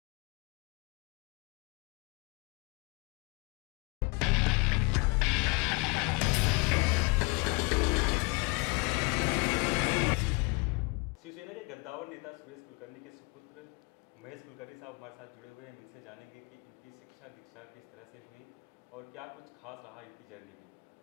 Shiv Sena के गद्दावर नेता सुरेश कुलकर्णी के सुपुत्र महेश कुलकर्णी साहब हमारे साथ जुड़े हुए हैं। हम इनसे जानेंगे कि इनकी शिक्षा दीक्षा किस तरह से हुई और क्या कुछ खास रहा इनकी जर्नी में।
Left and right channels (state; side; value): quieter; right; 29.1 dB